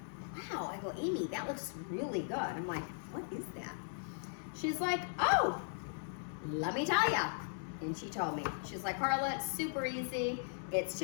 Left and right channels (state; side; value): silent; right; digital silence